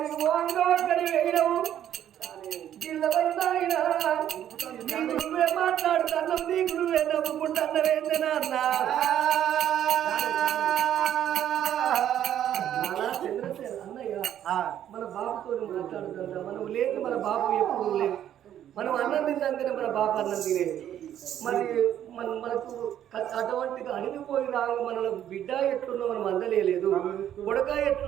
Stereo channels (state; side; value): quieter; left; 10.8 dB